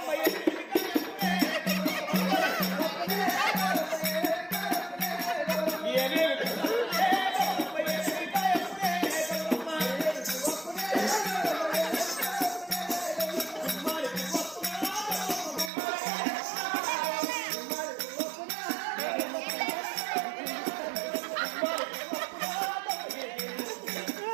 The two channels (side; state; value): left; drops out; at 15.7 s